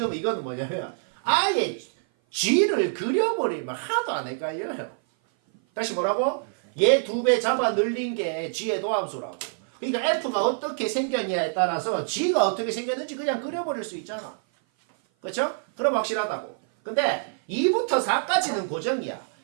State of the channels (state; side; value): silent; left; 56 dB below the other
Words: 이거는 뭐냐면 아예 G를 그려버리면 하나도 안 헷갈려요. 다시 뭐라고? 얘 2배 잡아 늘린 게 G의 도함수라고. 그러니까 F가 어떻게 생겼냐에 따라서 G가 어떻게 생겼는지 그냥 그려버릴 수 있잖아. 그렇죠? 그럼 확실하다고. 근데 2부터 4까지는 고정이야.